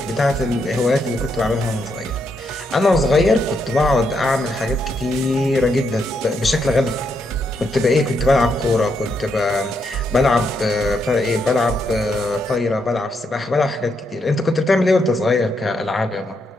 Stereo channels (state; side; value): normal; both; correlation 0.79